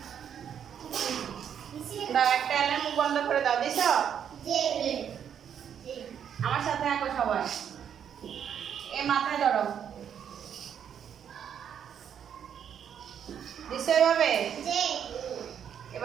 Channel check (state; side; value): quieter; left; 8.6 dB